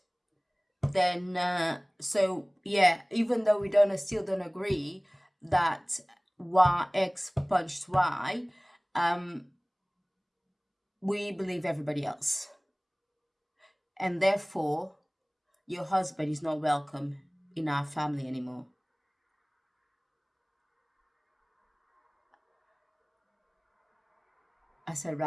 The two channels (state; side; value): identical; both; correlation 1.00